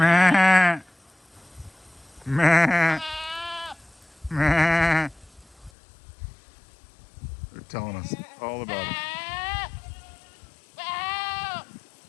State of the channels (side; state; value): right; drops out; at 5.7 s